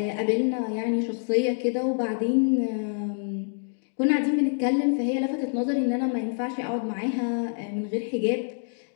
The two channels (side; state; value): right; silent; digital silence